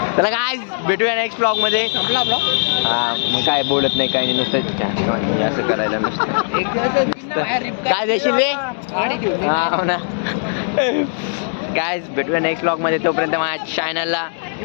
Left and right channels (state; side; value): silent; right; digital silence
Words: चला काय भेटूया नेक्स्ट ब्लॉग मध्ये. हा मग काय बोलत नाही काही नाही नुसतं असं करायला नुसतं. काय देशील रे. हा हो ना. काय भेटूया नेक्स्ट ब्लॉग मध्ये. तोपर्यंत माझ्या चॅनलला